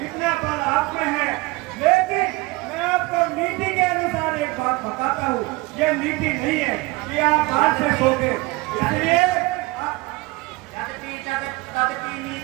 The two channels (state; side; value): quieter; left; 23.0 dB